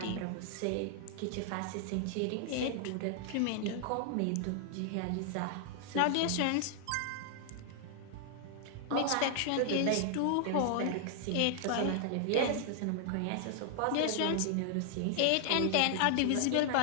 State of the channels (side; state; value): both; different; correlation 0.00